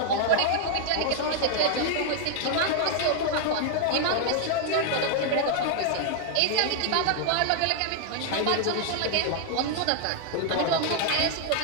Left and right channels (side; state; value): both; different; correlation 0.00